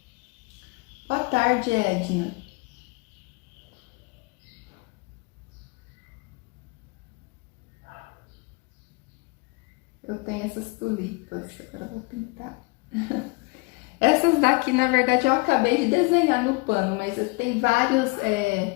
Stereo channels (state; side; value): quieter; right; 27.1 dB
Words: Boa tarde, Edna. Eu tenho essas tulipas, agora eu vou pintar. Essas daqui, na verdade, eu acabei de desenhar no pano, mas tem vários